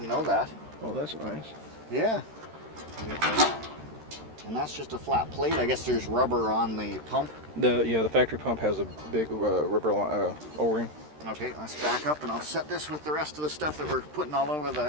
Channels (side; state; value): left; late; 13 ms